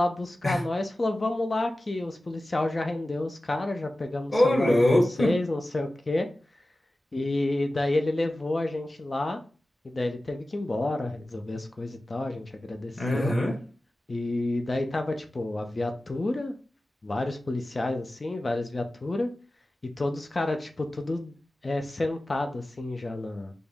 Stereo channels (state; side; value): normal; both; correlation 0.95